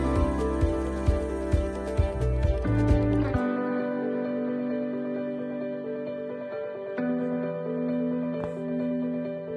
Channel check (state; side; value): identical; both; correlation 1.00